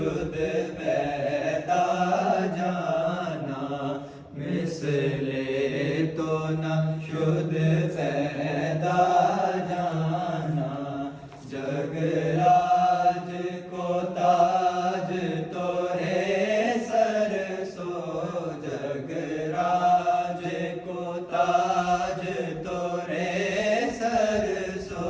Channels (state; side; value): identical; both; correlation 1.00